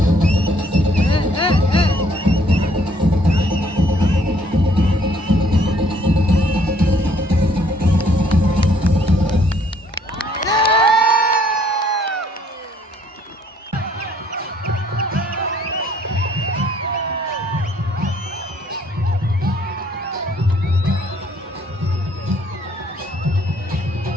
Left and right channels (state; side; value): normal; both; correlation 0.63